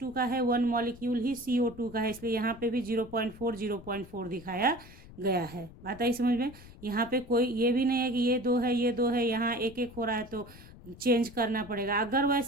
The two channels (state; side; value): noise; left; rumble, 19 dB below the sound